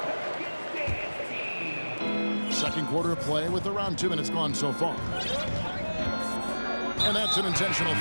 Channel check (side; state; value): both; inverted; correlation -1.00